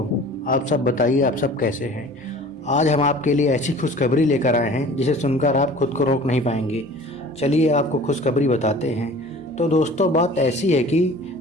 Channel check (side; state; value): both; normal; correlation 0.45